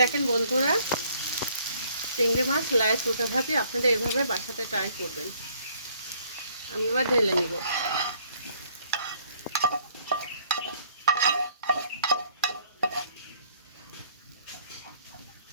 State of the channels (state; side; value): inverted; both; correlation -0.63